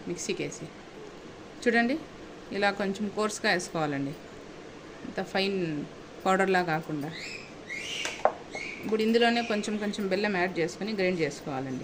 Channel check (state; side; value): identical; both; correlation 1.00